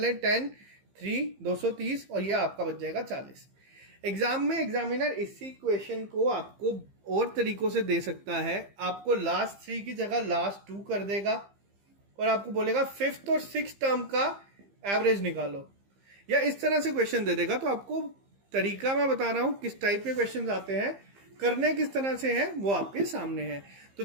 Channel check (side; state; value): left; late; 15 ms